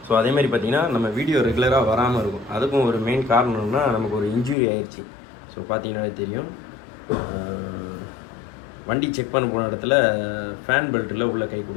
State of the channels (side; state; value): right; drops out; at 4.5 s